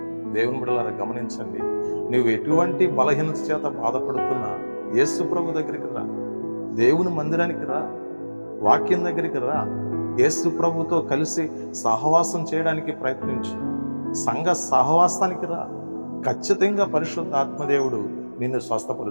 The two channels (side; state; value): both; inverted; correlation -1.00